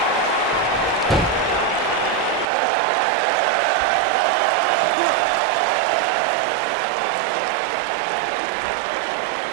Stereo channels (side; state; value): left; drops out; at 2.5 s